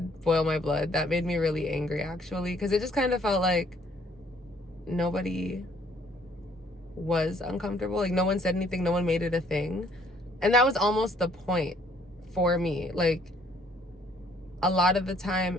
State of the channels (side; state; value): both; normal; correlation 0.62